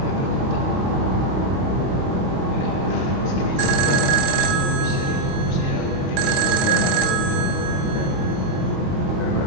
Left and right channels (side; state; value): left; late; 23 ms